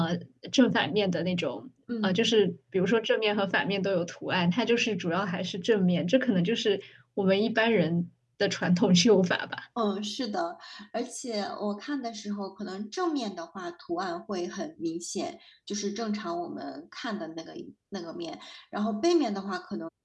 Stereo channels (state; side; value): identical; both; correlation 1.00